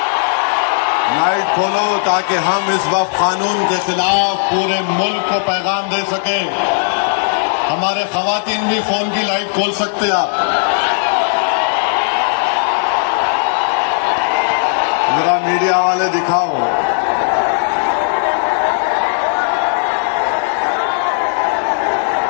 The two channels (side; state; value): right; silent; digital silence